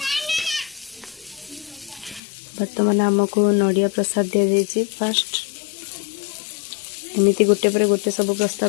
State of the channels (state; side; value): drops out; right; at 2.2 s